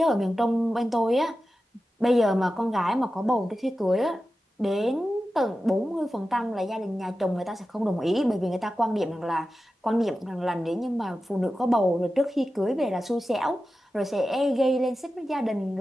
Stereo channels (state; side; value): normal; both; correlation 0.93